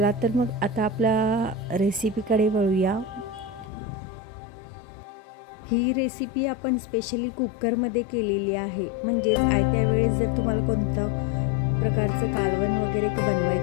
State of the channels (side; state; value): right; drops out; at 3.7 s